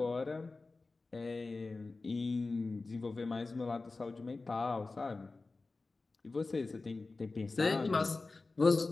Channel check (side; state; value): right; quieter; 3.6 dB